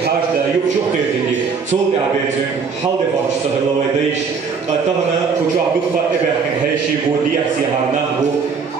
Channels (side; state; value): left; quieter; 5.5 dB